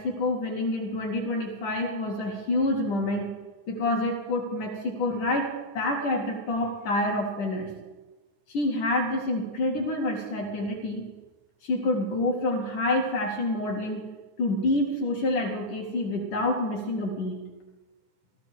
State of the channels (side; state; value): right; late; 10 ms